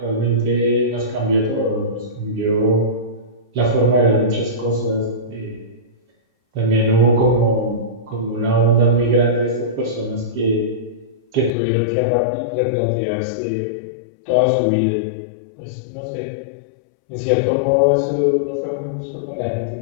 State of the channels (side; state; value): right; drops out; at 11.5 s